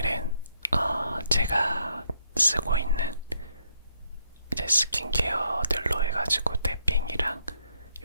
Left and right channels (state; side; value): inverted; both; correlation -0.74